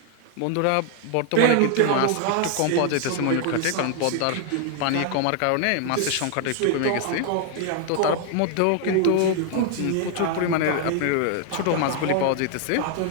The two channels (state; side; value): different; both; correlation 0.00